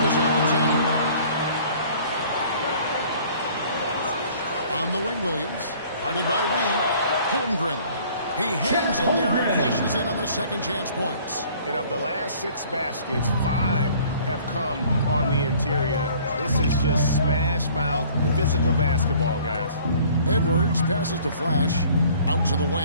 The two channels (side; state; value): both; inverted; correlation -0.53